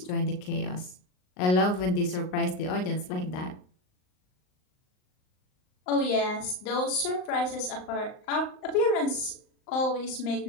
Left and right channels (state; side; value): late; right; 38 ms